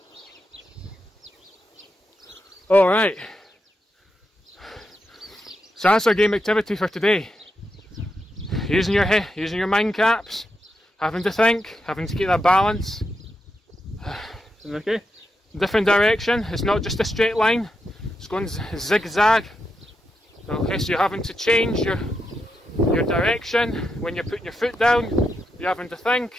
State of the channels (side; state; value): both; normal; correlation 0.85